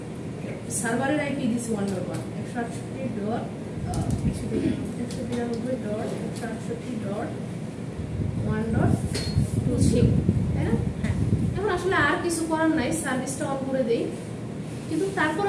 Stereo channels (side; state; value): both; identical; correlation 1.00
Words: সার্ভারের আইপি দিছি 1.1 168.168.1.23, তাই না? এখন আসলে আর কিছু করার নাই, সার্ভিসটা অন করে দেই। কিন্তু